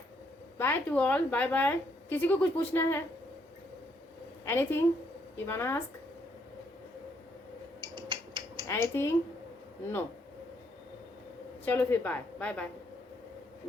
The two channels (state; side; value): normal; both; correlation 0.72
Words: bye to all, bye bye. किसी को कुछ पूछना है, anything you want ask, anything, no. चलो फिर bye bye bye